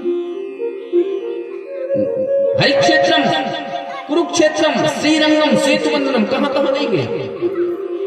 हरिक्षेत्रम कुरुक्षेत्रम श्रीरंगम सेतुबंधनम, कहां कहां नहीं गए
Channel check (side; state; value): both; identical; correlation 1.00